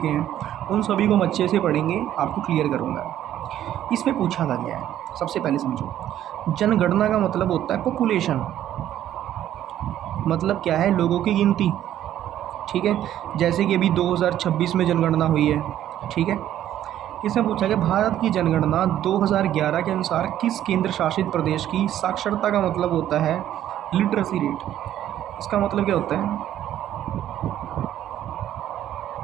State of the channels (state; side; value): quieter; left; 11.8 dB